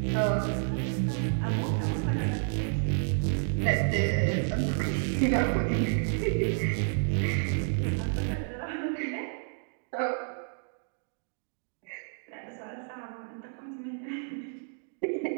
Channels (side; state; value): left; silent; 55 dB below the other